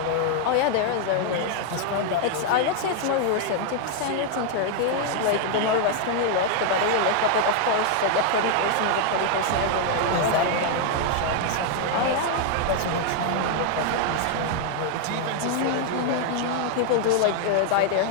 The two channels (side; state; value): both; different; correlation 0.00